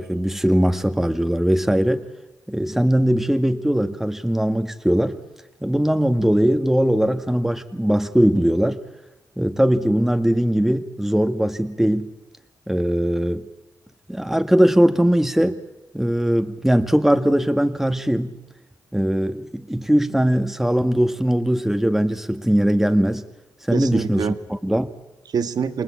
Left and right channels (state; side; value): normal; both; correlation 0.98